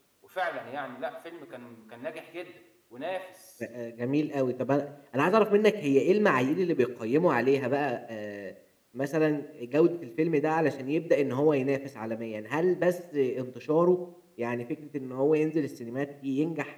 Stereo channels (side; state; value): both; identical; correlation 1.00